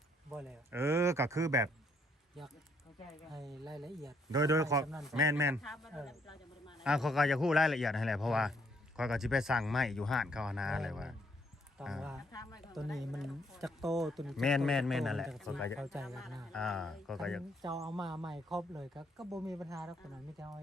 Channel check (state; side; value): normal; both; correlation 0.69